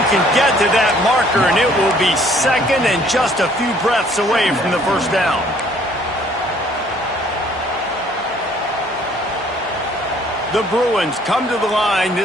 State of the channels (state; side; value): normal; both; correlation 0.60